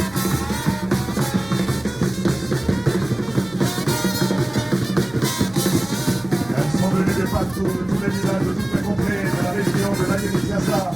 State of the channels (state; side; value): noise; right; hum, 21 dB below the sound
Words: Tous les villages de toutes les contrées de la région de l'Aïe-Kiassa